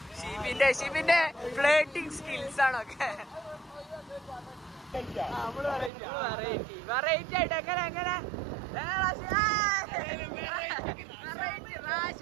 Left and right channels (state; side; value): drops out; left; at 5.9 s